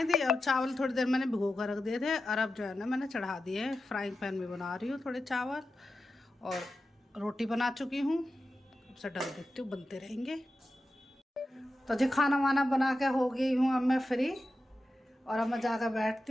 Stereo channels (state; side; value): normal; both; correlation 0.91